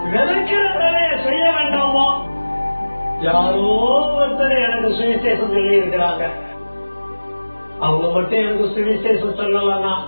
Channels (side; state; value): both; inverted; correlation -1.00